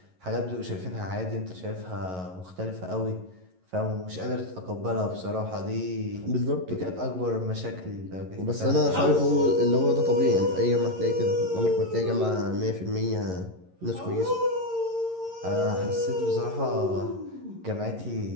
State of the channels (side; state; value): left; late; 11 ms